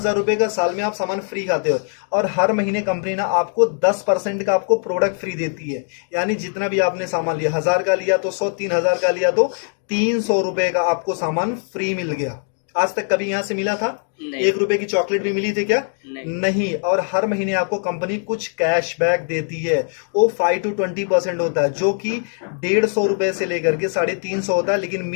रुपए का साल में आप सामान फ्री खाते हो। और हर महीने कंपनी ना आपको 10% का आपको प्रोडक्ट फ्री देती है। यानी जितना भी आपने सामान लिया, 1,000 का लिया तो 100, 3,000 का लिया तो 300 रुपए का आपको सामान फ्री मिल गया। आज तक कभी यहां से मिला था? नहीं। 1 रुपए की चॉकलेट भी मिली थी क्या? नहीं। और हर महीने आपको कंपनी कुछ कैशबैक देती है। वो 5 to 20% होता है, जो कि 150 रुपए से लेकर के 350 होता है, लेकिन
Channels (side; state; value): right; silent; 56 dB below the other